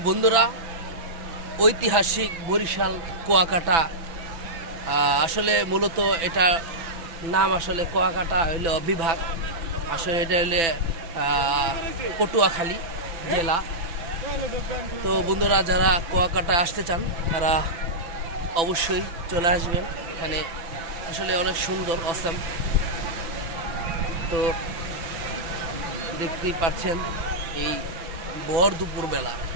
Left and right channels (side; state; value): left; late; 6.0 ms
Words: বন্ধুরা, ঐতিহাসিক বরিশাল কুয়াকাটা, আসলে মূলত এটা নাম আসলে কুয়াকাটা হইল বিভাগ, আসলে এটা হইলে পটুয়াখালী জেলা। তো বন্ধুরা, যারা কুয়াকাটা আসতে চান তারা অবশ্যই চলে আসবেন। এখানে আসলে অনেক সুন্দর, অসাম। তো দেখতেই পাচ্ছেন এই ভর দুপুরবেলা